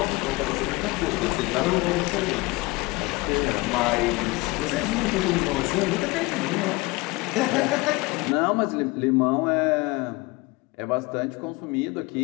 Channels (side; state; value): right; quieter; 23.4 dB